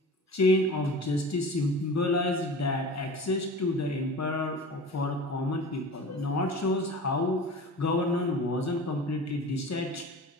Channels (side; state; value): both; normal; correlation 0.36